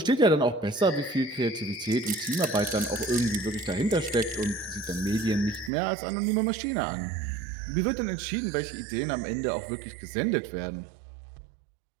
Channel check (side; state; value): left; drops out; at 5.7 s